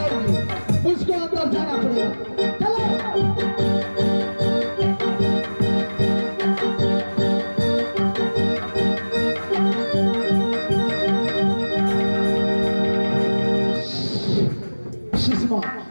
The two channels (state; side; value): inverted; both; correlation -1.00